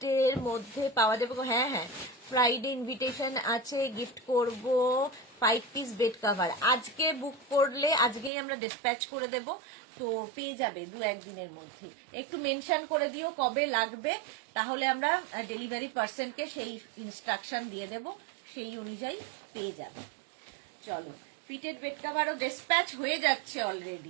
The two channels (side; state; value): left; drops out; at 8.3 s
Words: এর মধ্যে পাওয়া যাবে? হ্যাঁ হ্যাঁ, ফ্রাইডে ইনভিটেশন আছে, গিফট করব 5 পিস বেড কাভার। আজকে বুক করলে আজকেই আমরা ডিসপ্যাচ করে দেব, তো পেয়ে যাবে 2-1 দিনের মধ্যে। একটু মেনশন করে দিও কবে লাগবে, তাহলে আমরা ডেলিভারি পার্সনকে সেই ইনস্ট্রাকশন দিয়ে দেব, সেই অনুযায়ী পেয়ে যাবে। চলো, ফিটেড বেড কাভারও ডিসপ্যাচ হয়ে যাচ্ছে